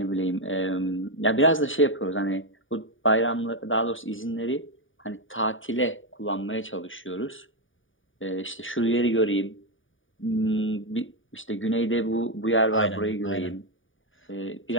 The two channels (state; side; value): late; right; 0.57 ms